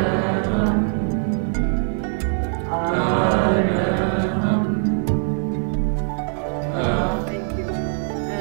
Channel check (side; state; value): left; silent; digital silence